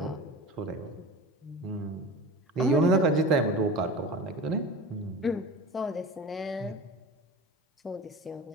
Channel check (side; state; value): both; normal; correlation 0.34